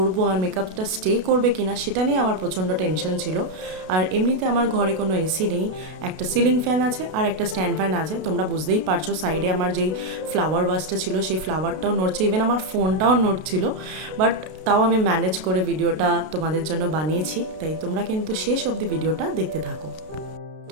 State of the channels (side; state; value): left; late; 32 ms